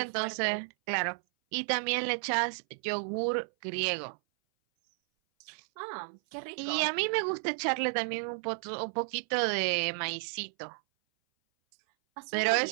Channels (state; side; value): silent; left; 56 dB below the other